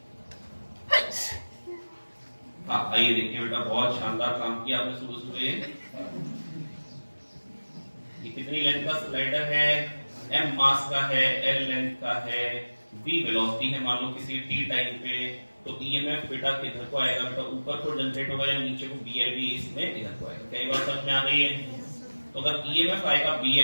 हाँ आइए देखिए बेटा, बहुत शानदार काम किया आपने सुबह सुबह। ये कितनी लेंथ का स्लाइडर है? m मास का है, l लेंथ का है, v वेलोसिटी है मान लो किसी t टाइम पे। तो ईएमएफ बेटा किधर को आएगा बेटा? ऊपर को जनरेट होगा या नीचे को? BLV इसमें इधर को आएगा। कई बार समझ में आ गई है? तो अगर ईएमएफ आएगा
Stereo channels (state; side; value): inverted; both; correlation -1.00